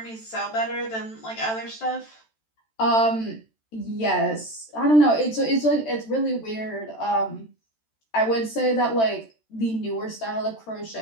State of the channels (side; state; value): right; late; 13 ms